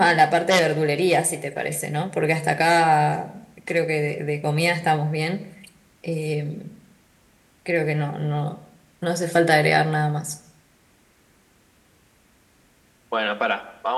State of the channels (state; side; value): identical; both; correlation 1.00